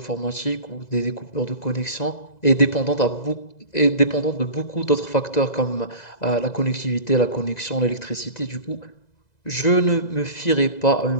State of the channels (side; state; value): right; late; 2.0 ms